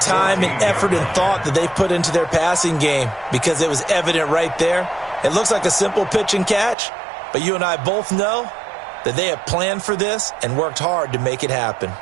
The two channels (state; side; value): drops out; left; at 6.8 s